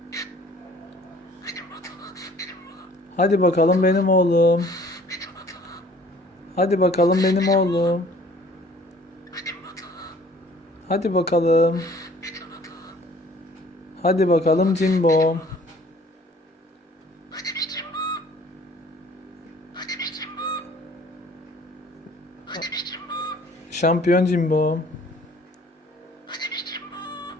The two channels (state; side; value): normal; both; correlation 0.54